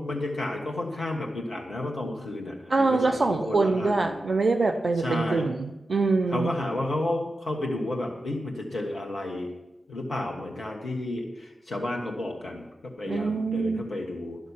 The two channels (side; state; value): both; normal; correlation 0.90